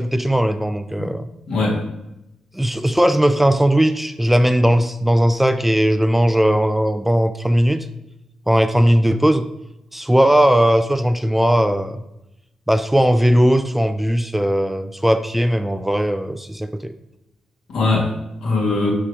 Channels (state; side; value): normal; both; correlation 0.96